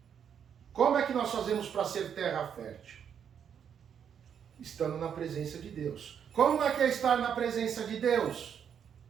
Como é que nós fazemos para ser terra fértil? Estando na presença de Deus. Como é que é estar na presença de Deus?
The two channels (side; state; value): left; quieter; 8.1 dB